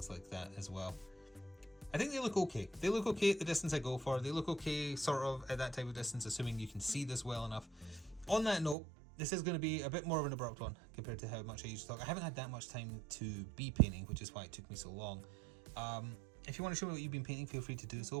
like that as well. I think they look okay. They look okay at the distance I go for. They look okay sort of at that type of distance, assuming you can see this well enough. On that note, this is going to be a bit more of an abrupt one compared to how much I usually talk. I haven't had that much time to be painting, which is why it took me so long. If you want to show me what you've been painting, feel free to do so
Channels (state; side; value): drops out; left; at 8.8 s